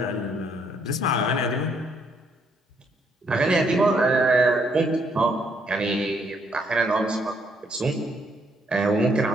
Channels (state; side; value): normal; both; correlation 0.71